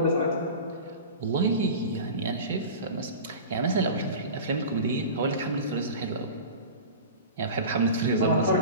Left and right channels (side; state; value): both; inverted; correlation -0.34